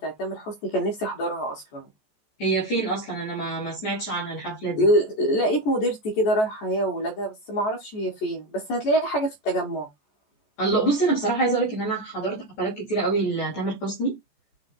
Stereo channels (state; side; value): late; right; 14 ms